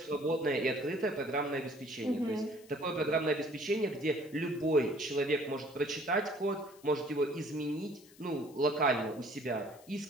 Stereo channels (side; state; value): left; noise; hiss, 24 dB below the sound